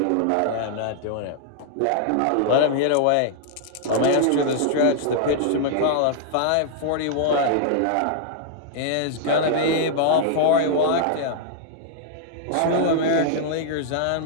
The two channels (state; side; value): different; both; correlation -0.01